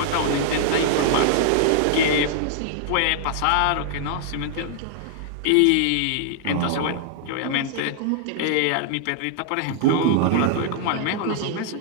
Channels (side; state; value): both; different; correlation -0.01